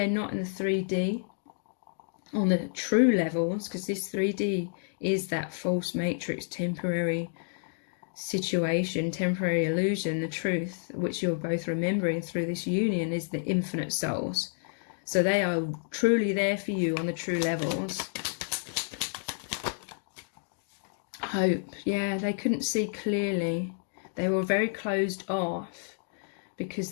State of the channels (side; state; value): right; silent; digital silence